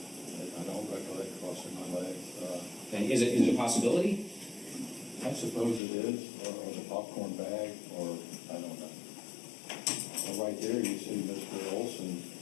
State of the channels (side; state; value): right; drops out; at 5.8 s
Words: don't recollect crossing my leg. And is it a possibility? I suppose it is, or the popcorn bag, or I don't know. Well, right there, you see Mr. Oulson